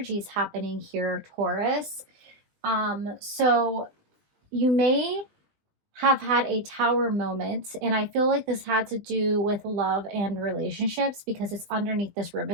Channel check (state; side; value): late; left; 20 ms